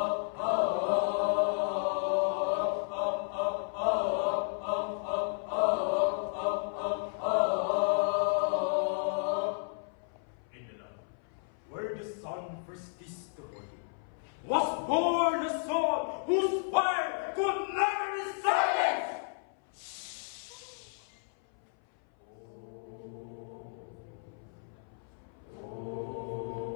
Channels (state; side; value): silent; right; 56 dB below the other